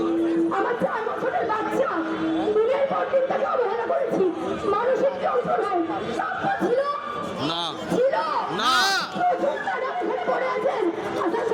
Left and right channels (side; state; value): both; identical; correlation 1.00